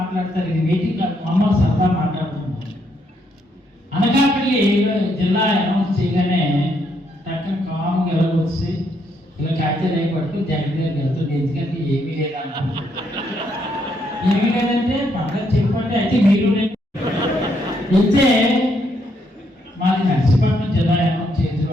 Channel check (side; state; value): both; normal; correlation 0.74